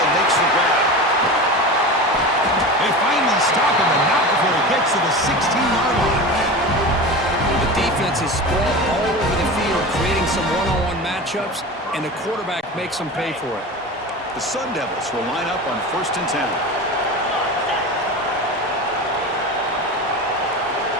makes the grab. They finally stop him, and not before he gets to the 16-yard line. The defense is spread all over the field, creating some one-on-one matchups, and the quarterback makes them pay for it. The Sun Devils will line up on 1st and 10.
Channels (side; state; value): both; normal; correlation 0.29